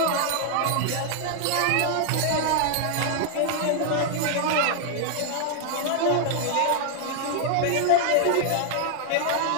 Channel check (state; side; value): different; both; correlation 0.00